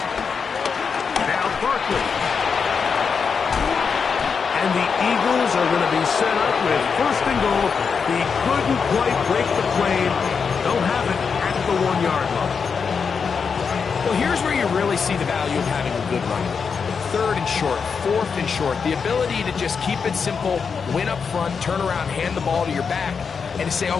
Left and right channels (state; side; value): quieter; right; 5.8 dB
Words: Now Barkley. And the Eagles are going to be set up with 1st and goal. He couldn't quite break the plane. They'll have it at the 1-yard line. Well, here's where you really see the value of having a good run. 3rd and short, 4th and short. The ability to just keep it simple, win up front, turn around, hand the ball to your back, and to say,